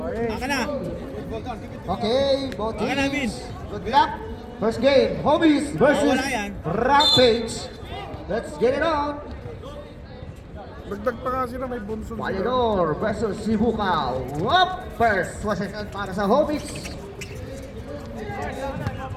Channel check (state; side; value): identical; both; correlation 1.00